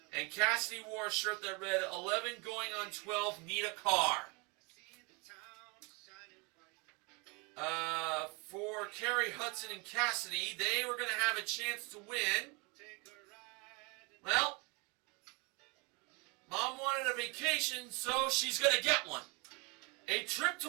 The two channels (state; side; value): quieter; left; 30.0 dB